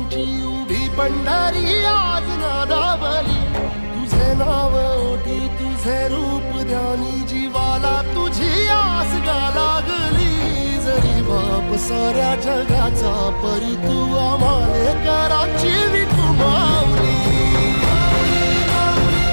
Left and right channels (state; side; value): inverted; both; correlation -1.00